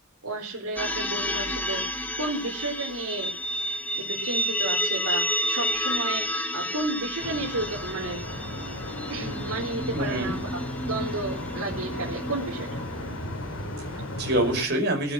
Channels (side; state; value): both; normal; correlation 0.14